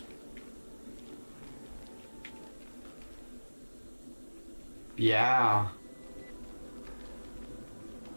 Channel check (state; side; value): inverted; both; correlation -1.00